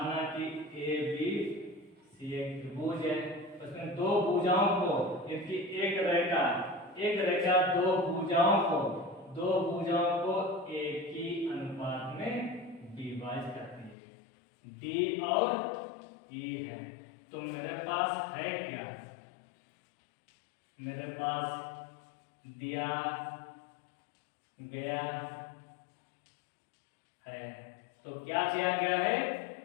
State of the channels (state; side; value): drops out; right; at 14.0 s